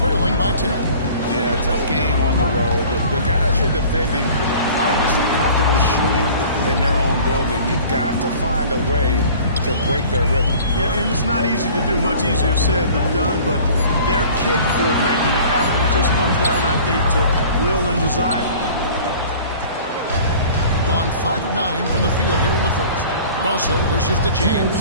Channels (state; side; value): inverted; both; correlation -0.46